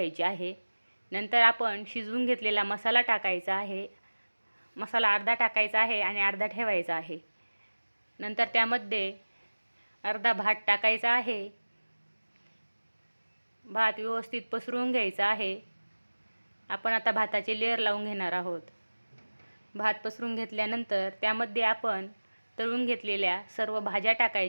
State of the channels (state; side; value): inverted; both; correlation -1.00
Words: आहे. नंतर आपण शिजवून घेतलेला मसाला टाकायचा आहे. मसाला अर्धा टाकायचा आहे आणि अर्धा ठेवायचा आहे. नंतर त्यामध्ये अर्धा भात टाकायचा आहे. भात व्यवस्थित पसरवून घ्यायचा आहे. आपण आता भाताचे लेयर लावून घेणार आहोत. भात पसरून घेतल्यानंतर त्यामध्ये आपण तळून घेतलेल्या सर्व भाज्या